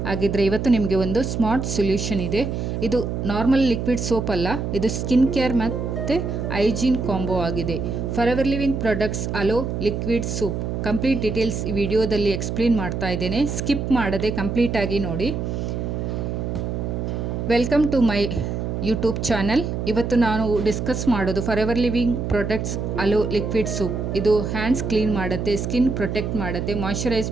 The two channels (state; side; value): noise; right; hum, 3 dB below the sound